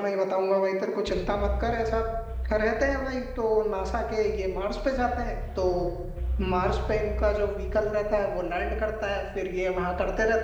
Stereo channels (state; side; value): identical; both; correlation 1.00